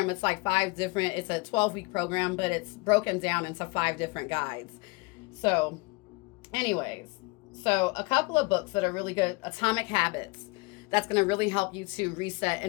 it's like it's a 12-week program, but it's broken down into 5 different guides. So anyways, so a couple of books that are really good. Atomic Habits. That's going to really help you to reset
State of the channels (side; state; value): right; quieter; 26.8 dB